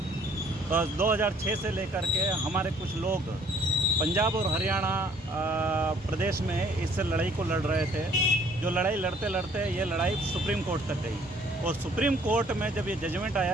2006 से लेकर के हमारे कुछ लोग पंजाब और हरियाणा प्रदेश में इस लड़ाई को लड़ रहे थे। जो लड़ाई लड़ते लड़ते ये लड़ाई सुप्रीम कोर्ट तक गई और सुप्रीम कोर्ट में जब ये जजमेंट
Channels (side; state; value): both; normal; correlation 0.59